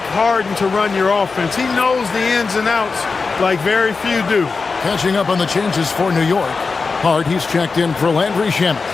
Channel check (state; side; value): quieter; right; 4.5 dB